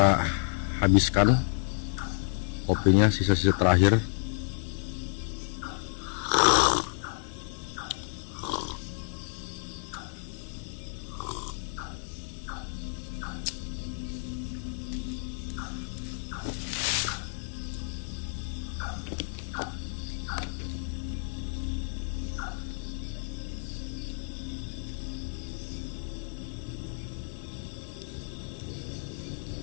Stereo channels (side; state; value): right; silent; digital silence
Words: habiskan kopinya, sisa-sisa terakhir.